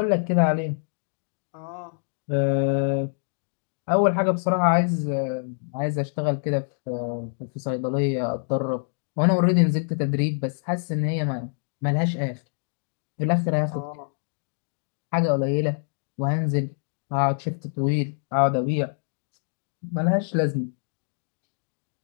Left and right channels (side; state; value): right; silent; digital silence